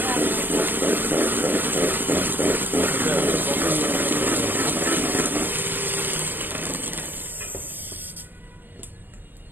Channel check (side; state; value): left; late; 0.093 ms